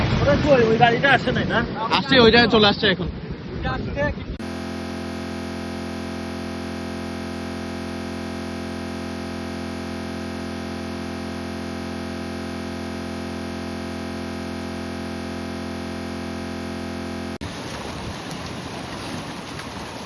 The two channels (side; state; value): both; identical; correlation 1.00